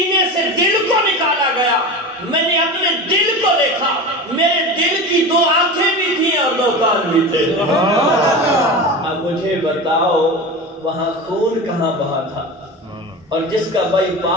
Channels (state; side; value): normal; both; correlation 0.28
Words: سے دل کو نکالا گیا، میں نے اپنے دل کو دیکھا، میرے دل کی 2 آنکھیں بھی تھیں اور 2 کان بھی تھے. اب مجھے بتاؤ وہاں خون کہاں بہا تھا؟ اور جس کا بائی